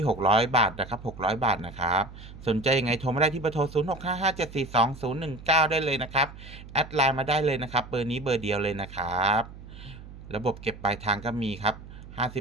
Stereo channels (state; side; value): noise; right; hum, 15 dB below the sound